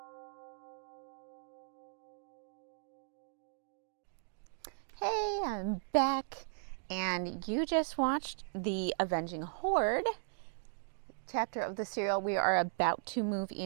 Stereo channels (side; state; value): left; silent; digital silence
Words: Hey, I'm back, and you just watched the Avenging Horde chapter of the serial. We are about to move